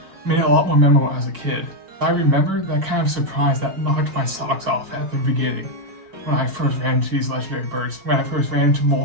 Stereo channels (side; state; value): left; late; 5.2 ms